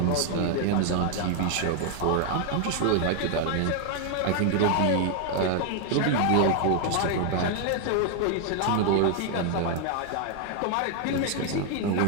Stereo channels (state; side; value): different; both; correlation 0.00